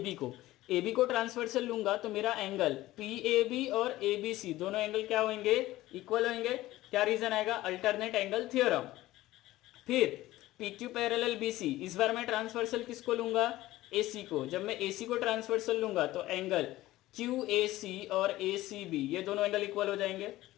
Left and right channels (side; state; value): right; quieter; 16.6 dB